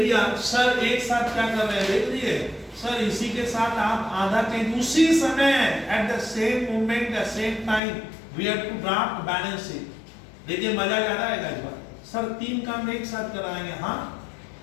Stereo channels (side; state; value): right; drops out; at 7.8 s